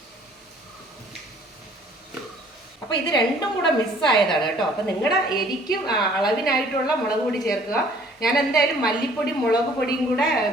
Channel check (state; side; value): normal; both; correlation 0.56